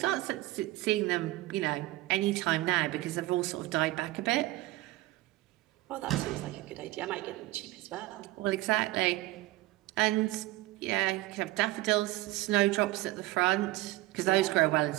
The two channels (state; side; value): quieter; left; 18.3 dB